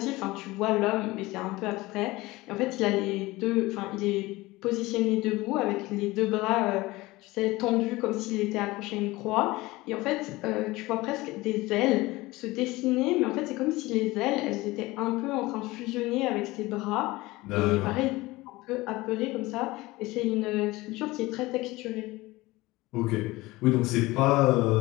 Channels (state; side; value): quieter; right; 20.2 dB